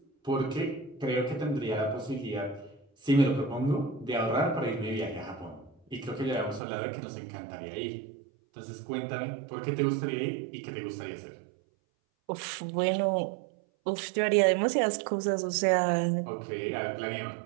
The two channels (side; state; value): left; drops out; at 6.6 s